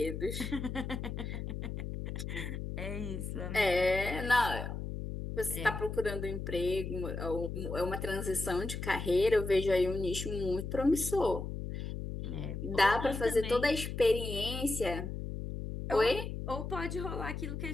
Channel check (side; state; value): left; noise; hum, 5 dB below the sound